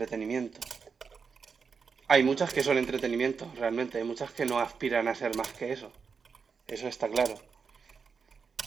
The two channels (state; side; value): quieter; left; 5.6 dB